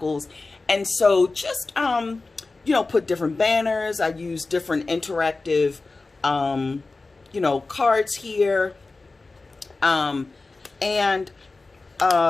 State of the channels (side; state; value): right; quieter; 3.6 dB